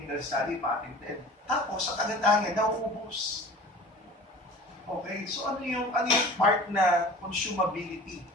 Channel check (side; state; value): both; normal; correlation 0.41